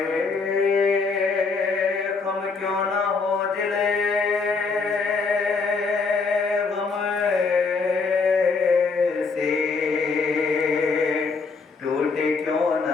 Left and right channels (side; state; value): right; quieter; 4.6 dB